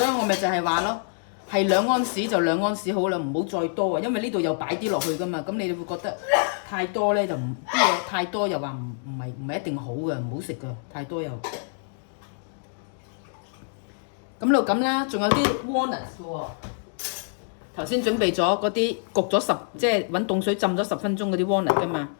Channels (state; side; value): silent; right; digital silence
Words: 以我咪就係話咯，係2安士就2安士好啦，唔好再多啊，因為呢度又擺啲落去噶嘛，咁你會覺得太多咧就唔啲嘢太多又話唔係一定好嘅，唔好食嘅，太多又。咁就咁啦，仲有啲 walnuts 嘅喎。頭先準備咗嗰啲焗咗即係揾凍水浸咗10分鐘嗰啲 walnut 噶嘛，